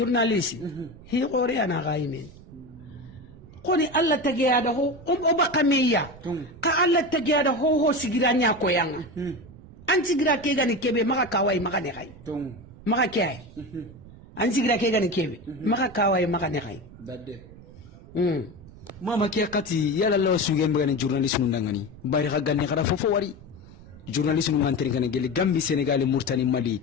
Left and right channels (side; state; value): right; noise; rumble, 19 dB below the sound